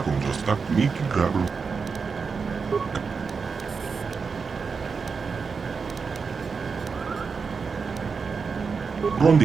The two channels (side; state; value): left; quieter; 5.2 dB